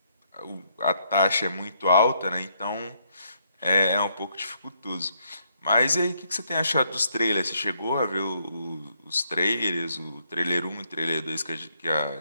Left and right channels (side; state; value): both; inverted; correlation -0.73